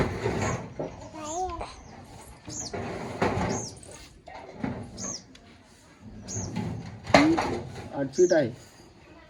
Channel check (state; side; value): identical; both; correlation 1.00